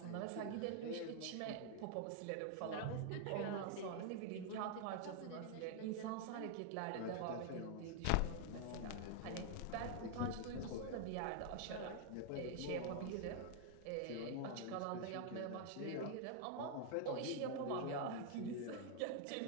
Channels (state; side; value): different; both; correlation 0.00